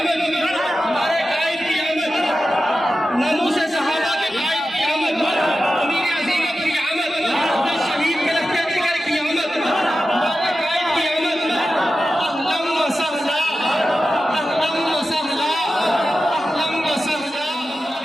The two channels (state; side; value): normal; both; correlation 0.93